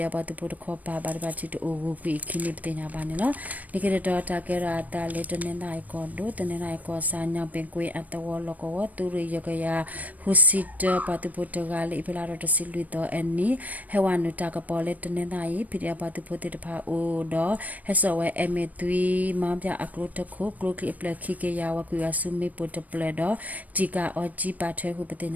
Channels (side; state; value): left; late; 0.075 ms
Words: ပတုဖို့ခောပါဘာဘာချစ်တူဝကွေခင်းနေပတင်ညာပါနေနော်နေကတော်တာကေရတာလေးတနေနိုင်ကောဒိုတနေနိုင်ကောစာညောင်ပင်ကွေအတဝလကောဝသူရရကရဟူစစ်ပတုဖို့တကလေဖလာတော့တစီလူတော့အနီဟဝနုတာကပေါ်လေတနေနိုင်ဖိရပတုဖို့တဖာအိုတော့ဟဆောဝဲအမေသွီမောင်ပြအကလုတခုကလုကလိပလက်ခိကေယာဝကွေအဆုမေပုတပလက်တော့ဂျီကာအောဂျီပါထွဲခုပတင်